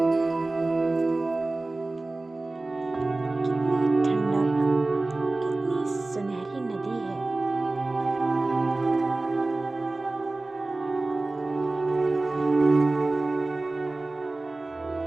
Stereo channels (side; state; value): left; quieter; 3.1 dB